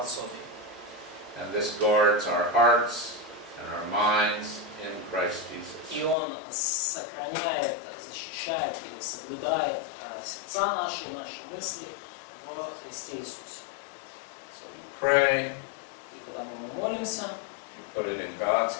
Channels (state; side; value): drops out; right; at 6.2 s